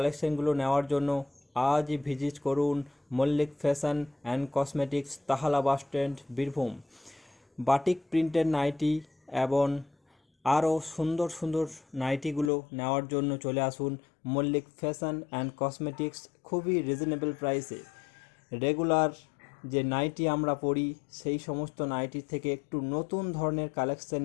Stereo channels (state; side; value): drops out; right; at 12.5 s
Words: নেওয়ার জন্য আজই ভিজিট করুন Mallick fashion and cosmetics, Tahala bus stand, Birbhum. Batik প্রিন্টের নাইটি এবং আরও সুন্দর সুন্দর নাইটিগুলো নেওয়ার জন্য চলে আসুন মল্লিক ফ্যাশন অ্যান্ড কসমেটিক্স। খুবই রিজনেবল প্রাইসে রেগুলার যে নাইটি আমরা পরি সেই সমস্ত নাইটি থেকে একটু নতুন ধরনের কালেকশন